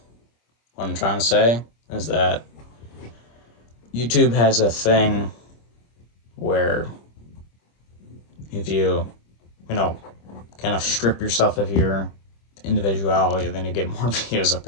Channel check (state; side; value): late; right; 25 ms